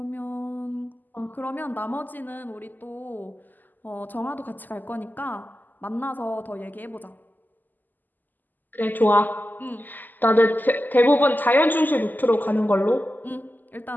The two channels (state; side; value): late; right; 0.086 ms